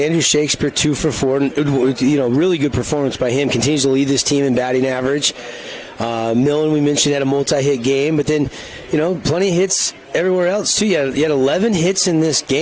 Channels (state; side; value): identical; both; correlation 1.00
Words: Andrew Shakespeare 2 for 4. Really good performance by him. Continues to lead this team in batting average. Millen, we mentioned, had a multi-hit game, but then plenty of hits everywhere else too. You had 11 hits in this